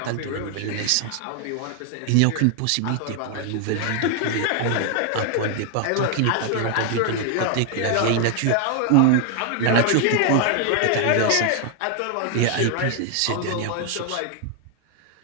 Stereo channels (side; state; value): both; different; correlation 0.00